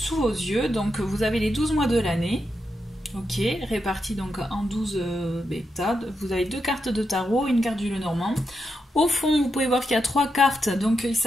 vos yeux. Donc vous avez les 12 mois de l'année, ok, répartis donc en 12 bêta. Vous avez deux cartes de tarot, une carte du Lenormand. Au fond, vous pouvez voir qu'il y a trois cartes, donc il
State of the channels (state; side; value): normal; both; correlation 0.85